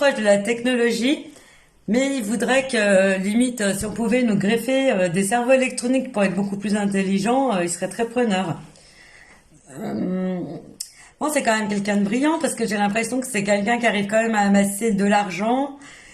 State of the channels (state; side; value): identical; both; correlation 1.00